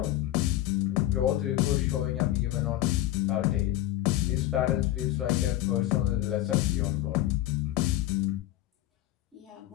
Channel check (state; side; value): quieter; right; 14.5 dB